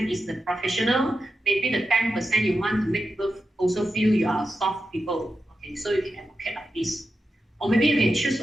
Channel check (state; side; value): normal; both; correlation 0.89